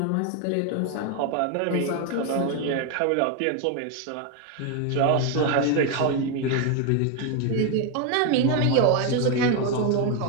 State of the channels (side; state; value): both; different; correlation 0.01